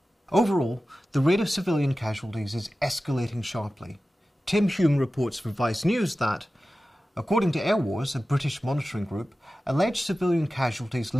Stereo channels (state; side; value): normal; both; correlation 0.95